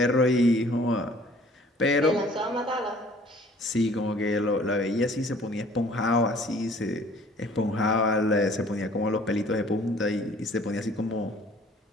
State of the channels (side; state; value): both; normal; correlation 0.54